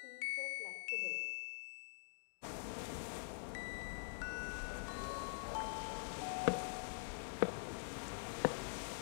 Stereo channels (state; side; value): silent; right; digital silence